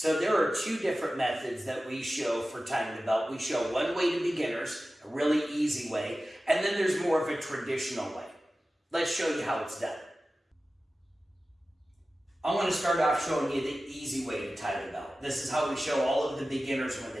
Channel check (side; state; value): both; normal; correlation 0.95